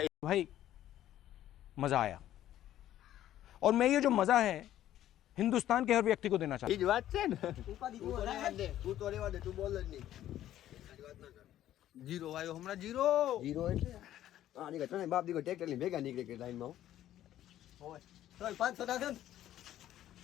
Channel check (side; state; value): right; quieter; 12.6 dB